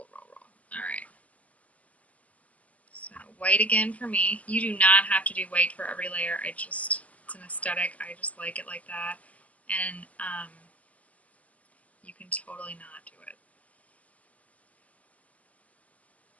roll, roll. Alright. So white again for me. You do not have to do white for every layer. It's an aesthetic. I just like it like that. And you can totally not do it.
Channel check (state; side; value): late; right; 0.068 ms